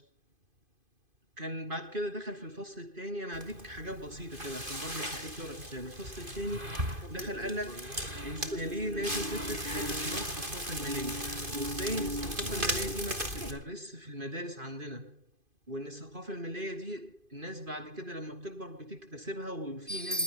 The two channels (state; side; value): late; left; 2.5 ms